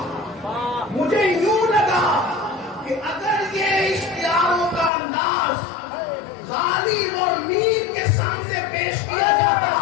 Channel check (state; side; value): drops out; right; at 4.9 s